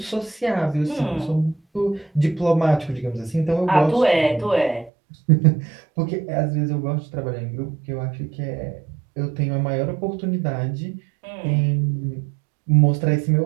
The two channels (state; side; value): drops out; left; at 4.9 s